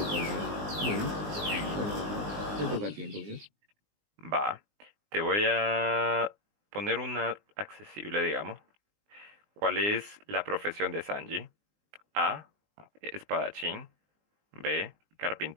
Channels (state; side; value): late; left; 19 ms